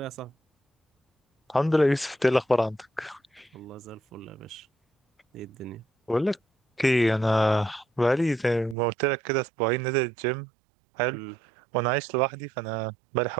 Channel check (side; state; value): left; drops out; at 8.8 s